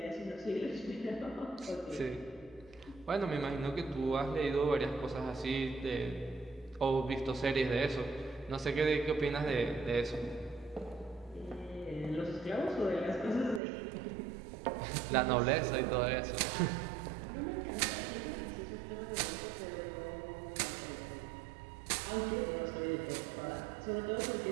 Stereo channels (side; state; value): left; drops out; at 13.6 s